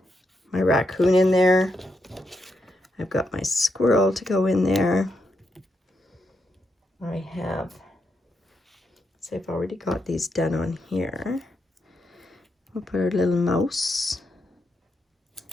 my raccoon in there. I've got my squirrel to go in there. I have, so I've already got these done on here. We'll put our little mouse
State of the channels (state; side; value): normal; both; correlation 0.82